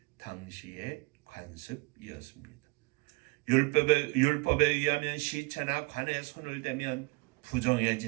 당시의 관습이었습니다. 율법에 의하면 시체나 관에 손을 대면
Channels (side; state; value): left; quieter; 26.2 dB